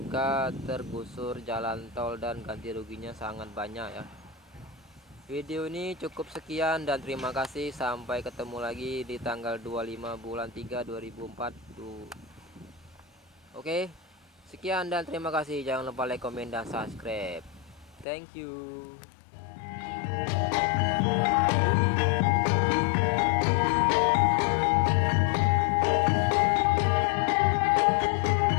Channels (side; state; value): right; drops out; at 18.1 s